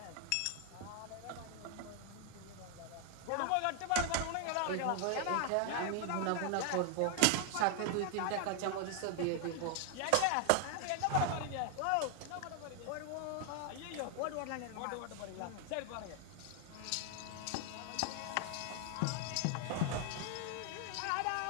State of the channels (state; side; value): different; both; correlation 0.00